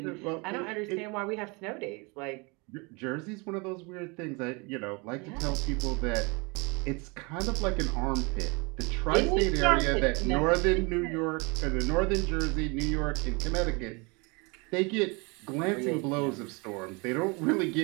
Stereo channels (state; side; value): quieter; left; 29.1 dB